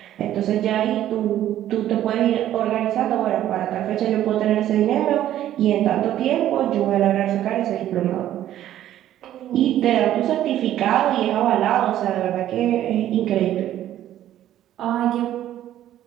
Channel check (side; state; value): left; quieter; 12.3 dB